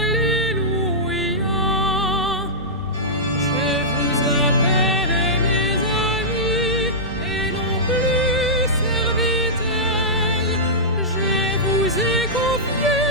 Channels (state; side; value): normal; both; correlation -0.13